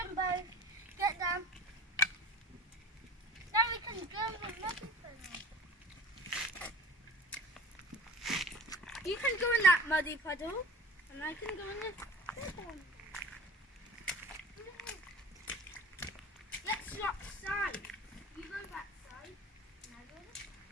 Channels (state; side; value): normal; both; correlation 0.40